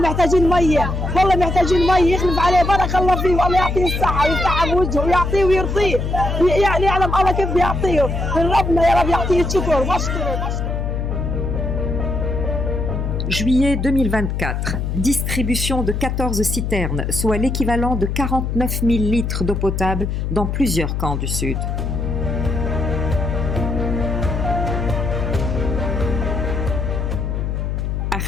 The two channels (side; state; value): left; noise; hum, 2 dB below the sound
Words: ميه، والله محتاجين ميه، يخلف عليه بارك الله فيه والله يعطيه الصحه ويفتح بوجهه ويعطيه ويرضيه، يعني يعلم الله كيف بيعطيه، من ربنا يا رب يعطيه الشكر واشكره. Juillet 2024, distribution de 14 citernes, soit l'équivalent de 49 000 litres d'eau potable dans plusieurs camps du Sud.